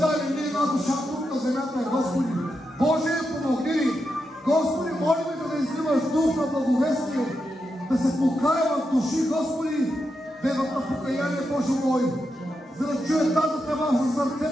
ни една душа тук на земята, Господи. Боже, помогни ни! Господи, молим да изливаш дух на благовестие, да се покаяват души, Господи, да имат на покаяние, Боже мой, за да чуят тази тръба за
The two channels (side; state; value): both; normal; correlation 0.86